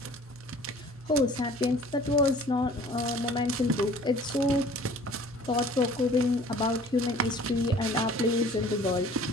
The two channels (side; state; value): both; normal; correlation 0.50